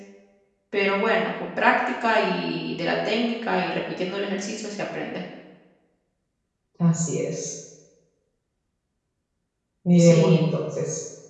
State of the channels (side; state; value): both; identical; correlation 1.00